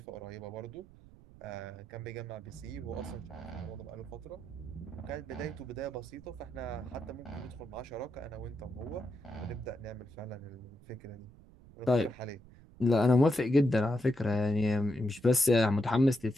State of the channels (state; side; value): noise; right; rumble, 22 dB below the sound